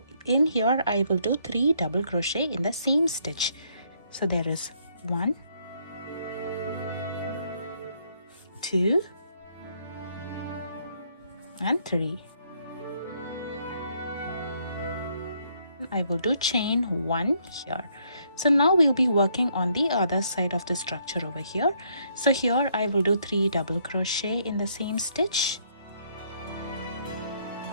in here I will do 3 double crochet in the same stitch. So there is 1, 2 and 3. I will do chain 1 here. So now we'll be working on the other side of the structure over here. So here I will do 3 double crochet in the same stitch,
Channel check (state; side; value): inverted; both; correlation -0.70